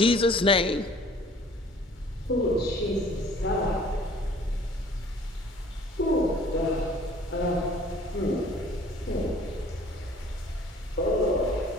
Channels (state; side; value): normal; both; correlation 0.53